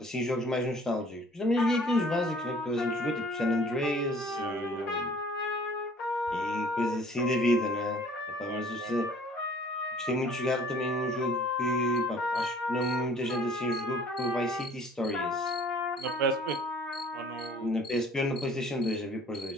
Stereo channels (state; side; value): normal; both; correlation 0.53